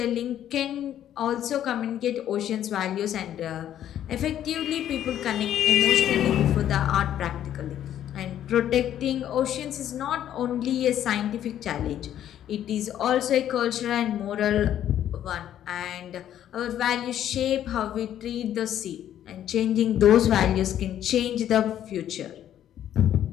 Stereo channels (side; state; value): right; quieter; 11.0 dB